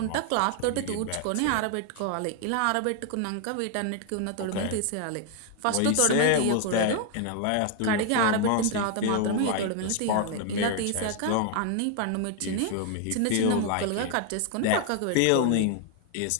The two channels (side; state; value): both; different; correlation 0.00